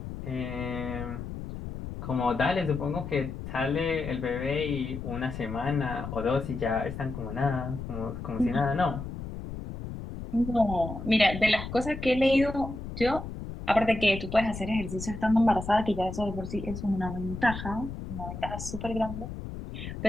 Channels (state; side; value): noise; left; rumble, 8 dB below the sound